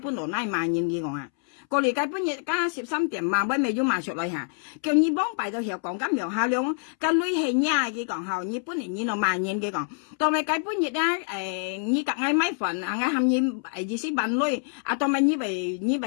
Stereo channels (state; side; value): silent; right; 61 dB below the other